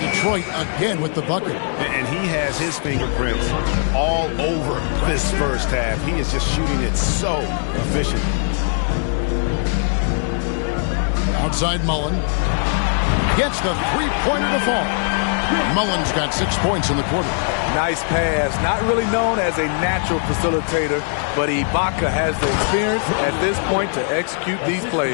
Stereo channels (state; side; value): silent; right; 58 dB below the other